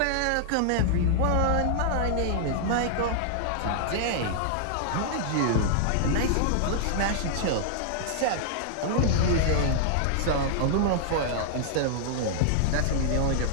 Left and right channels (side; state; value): both; different; correlation -0.01